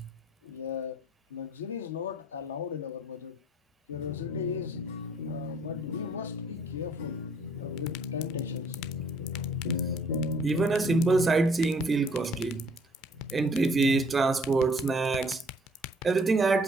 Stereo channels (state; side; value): normal; both; correlation 0.60